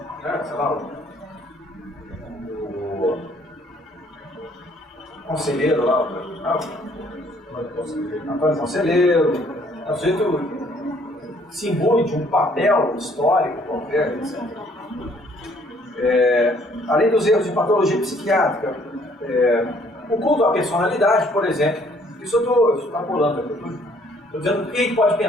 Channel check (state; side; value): normal; both; correlation 0.62